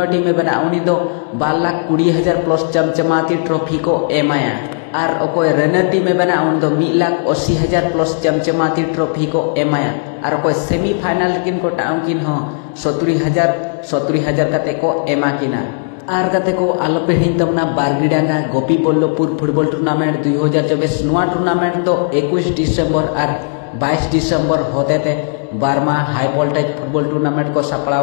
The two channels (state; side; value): silent; right; digital silence